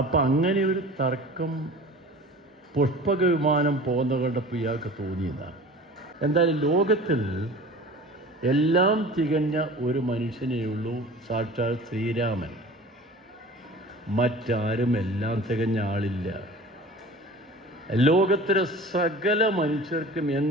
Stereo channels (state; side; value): normal; both; correlation 0.40